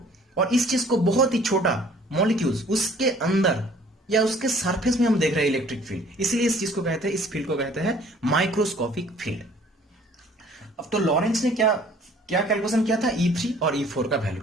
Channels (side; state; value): both; normal; correlation 0.55